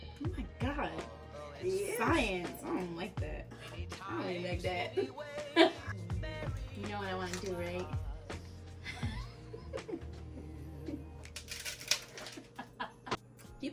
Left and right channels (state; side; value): identical; both; correlation 1.00